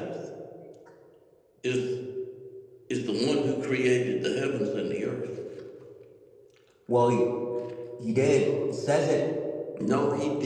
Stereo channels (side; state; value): both; identical; correlation 1.00